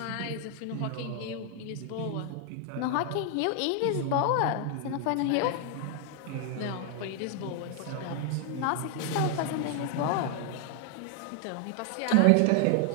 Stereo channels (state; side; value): different; both; correlation 0.00